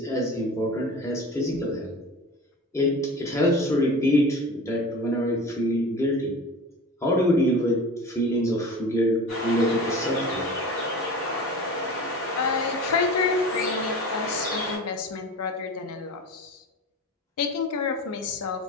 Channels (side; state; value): both; normal; correlation 0.35